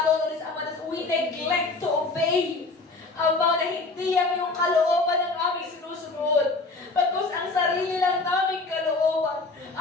Ama, na we neglect to obey. Ama, na hindi ang iyong kalooban ang aming sinusunod. Pagkus ang sarili lang naming kalooban.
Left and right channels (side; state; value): right; quieter; 3.5 dB